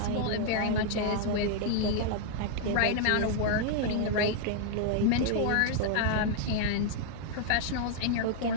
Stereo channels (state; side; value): different; both; correlation 0.00